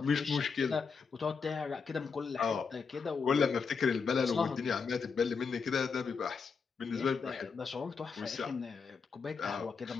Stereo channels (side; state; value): right; quieter; 5.4 dB